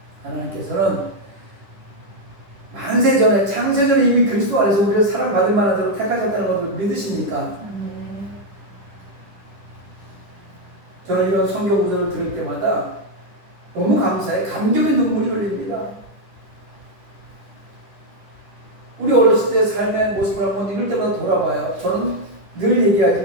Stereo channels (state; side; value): late; left; 10 ms